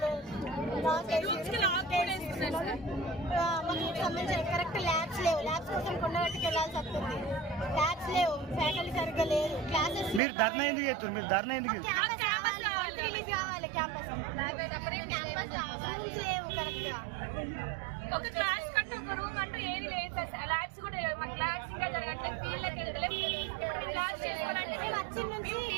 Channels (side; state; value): left; drops out; at 10.2 s